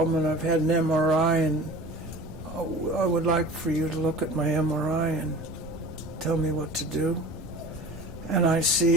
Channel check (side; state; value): right; noise; rumble, 16 dB below the sound